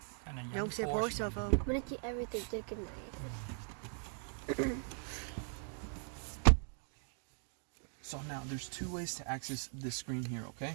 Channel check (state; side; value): silent; left; 51 dB below the other